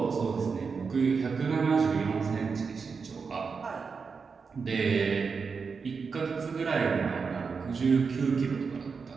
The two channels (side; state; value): left; quieter; 5.3 dB